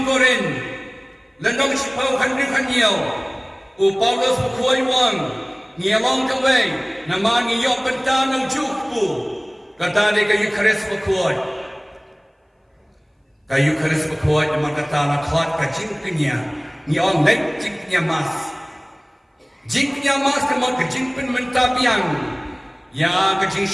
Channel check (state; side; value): identical; both; correlation 1.00